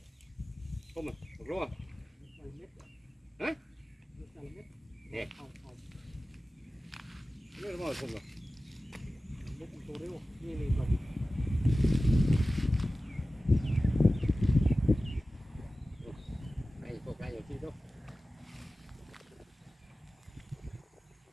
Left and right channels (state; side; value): normal; both; correlation 0.96